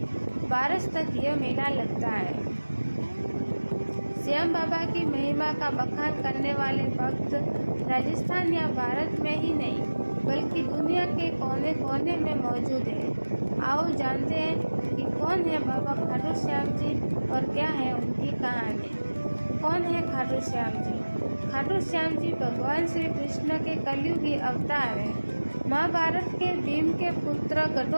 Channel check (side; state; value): both; inverted; correlation -1.00